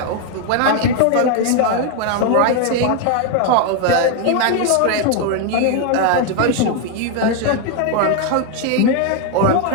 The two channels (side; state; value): both; different; correlation 0.01